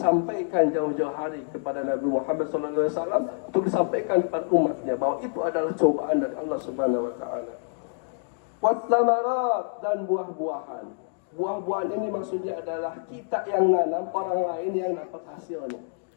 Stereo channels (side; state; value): right; silent; digital silence